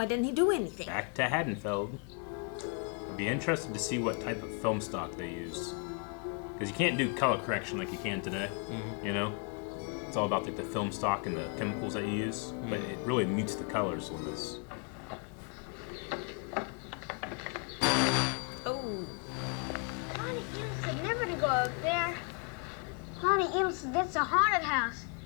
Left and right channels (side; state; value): right; quieter; 36.0 dB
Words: didn't he do anything? Back to Haddonfield. I'd be interested to see what type of film stock they use. Because you can't do color correction like you can today. You know? It's all about like the film stock and the chemicals that you use. But it really meets the colors on this. Oh, Lonnie Eno said never to go up there. Lonnie Eno said that's a haunted house.